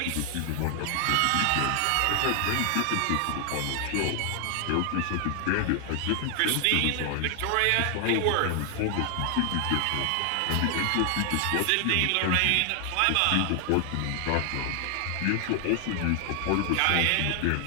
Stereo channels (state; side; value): different; both; correlation 0.00